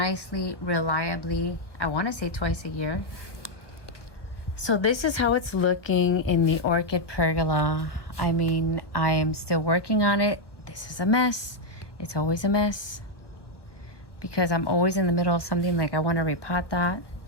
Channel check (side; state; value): right; late; 1.0 ms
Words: reliably. I want to say twice a year. So this is how it's looking in the orchid pergola. I mean, I am still working on it. This is a mess. It's always a mess because I'm always in the middle of something, like I want to repot that.